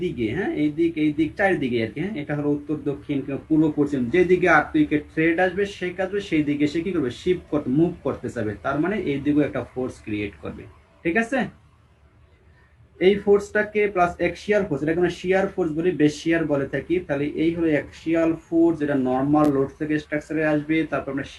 দিকে, হ্যাঁ এই দিক চারিদিকে আর কি, হ্যাঁ এটা হলো উত্তর দক্ষিণ কিংবা পূর্ব পশ্চিম, যেদিকে আর্থকুইকের থ্রেড আসবে সেই কাজবে সেই দিকে সে কি করবে, শিফট করতে মুভ করতে চাবে, তার মানে এই দিকেও একটা ফোর্স ক্রিয়েট করবে। ঠিক আছে, এই ফোর্সটাকে প্লাস অ্যাক্সিয়াল ফোর্স, এটা কোনো শিয়ার ফোর্স বলি, বেশিয়ার বলে থাকি, তাহলে এই হলো অ্যাক্সিয়াল ফোর্স, যেটা নর্মাল লোড থেকে স্ট্রাকচারে আসবে, তারপর আমরা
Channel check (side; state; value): both; identical; correlation 1.00